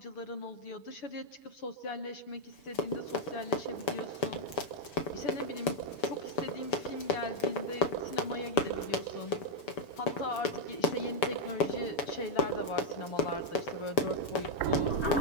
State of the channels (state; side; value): late; right; 6.9 ms